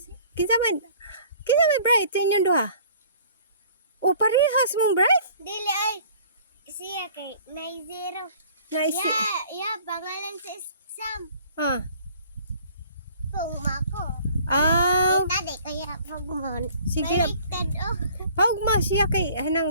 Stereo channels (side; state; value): both; inverted; correlation -0.52